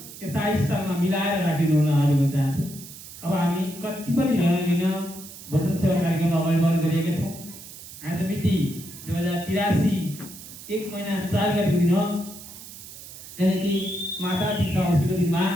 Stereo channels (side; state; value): right; noise; hiss, 15 dB below the sound